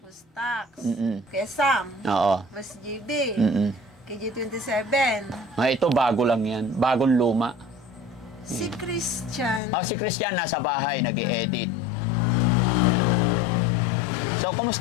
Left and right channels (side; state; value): right; drops out; at 9.6 s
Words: Boss Tax. Mm-mm. Kuya Sam. Oo. Boss JB. Mm-mm. KJ27. Ito, bago lang yan. Bagong luma. Si Christian. Si Christian nasa bahay, nag-i-edit. So,